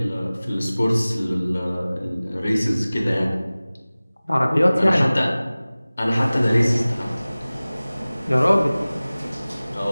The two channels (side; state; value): both; inverted; correlation -0.99